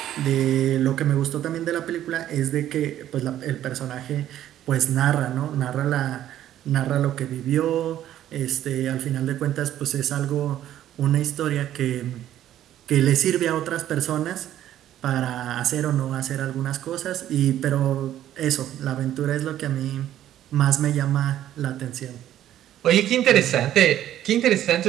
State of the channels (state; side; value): quieter; left; 12.1 dB